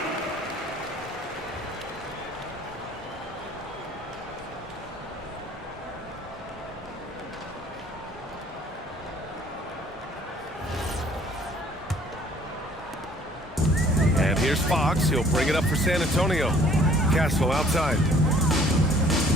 And here's Fox. He'll bring it up for San Antonio. Castle outside.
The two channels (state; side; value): normal; both; correlation 0.56